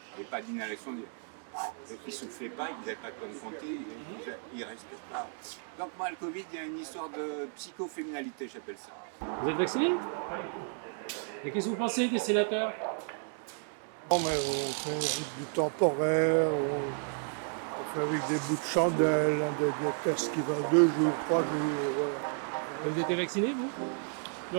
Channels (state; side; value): silent; left; 56 dB below the other